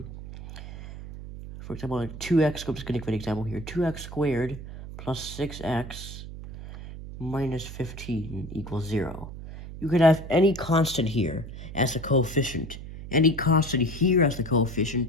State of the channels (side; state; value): right; noise; hum, 11 dB below the sound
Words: for example, 2x, I'm just going to give an example here, 2x squared plus 6x minus 15 equals 0. You could have any constant here as the coefficient, any constant here as the